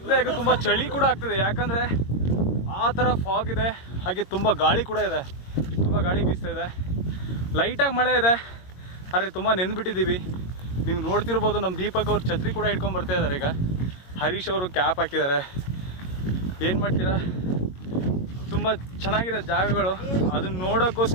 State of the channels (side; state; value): right; late; 22 ms